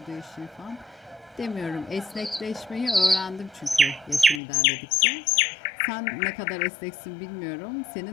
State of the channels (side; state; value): right; drops out; at 4.4 s